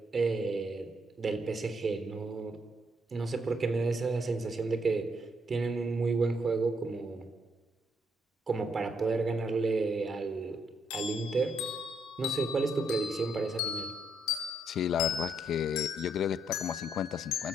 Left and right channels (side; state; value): both; normal; correlation 0.74